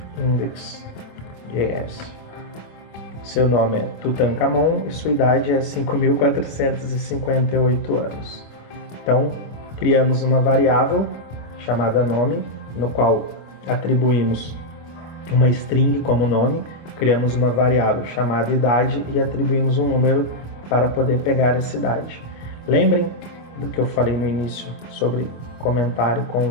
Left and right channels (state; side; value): late; right; 25 ms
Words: index.js. Seu nome é Tutankhamon e sua idade é 5.458 anos. Então criamos uma variável chamada nome, no qual atribuímos uma string como nome, criamos uma variável chamada idade e atribuímos um número para poder pegar essa idade. Lembrem do que eu falei no início sobre comentário